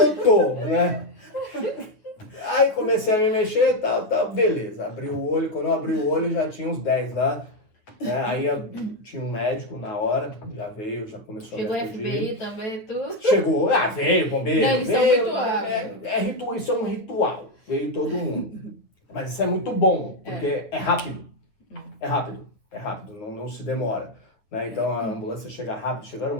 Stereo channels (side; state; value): right; late; 9.2 ms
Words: tô, né? Aí comecei a me mexer e tal. Beleza, abri o olho. Quando eu abri o olho, já tinha uns 10 lá. Né? Aí tinha um médico na hora, já veio, já começou Chegou a o me acudir. FBI também, tudo. Chegou, veio, bombeiro. Não, eles são veio, muito rápidos. isso é um ritual, veio todo mundo. Mas isso é muito bom, porque é rápido. É rápido, não se demora. Né? Então a ambulância chega rápido, chegaram